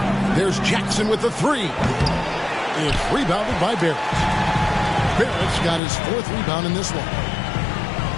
There's Jackson with the 3. It's rebounded by Barrett. Barrett's got his 4th rebound in this one.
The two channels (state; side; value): drops out; right; at 5.8 s